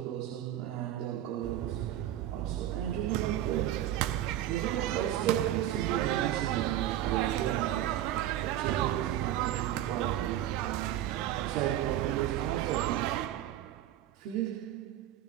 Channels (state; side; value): quieter; left; 12.5 dB